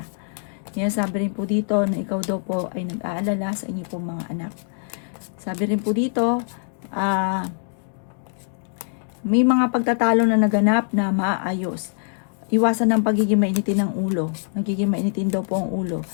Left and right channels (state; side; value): silent; right; digital silence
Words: Yan sabi rin po dito na ikaw daw po ay nag-aalala sa inyo pong mga anak. Sabi rin po dito, may mga pagtatalo na naganap na maaayos. Iwasan ng pagiging mainitin ng ulo. Nagiging mainitin daw po ang ulo.